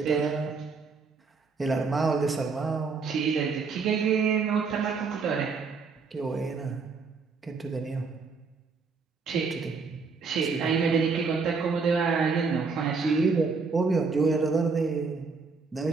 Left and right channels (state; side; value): quieter; left; 4.8 dB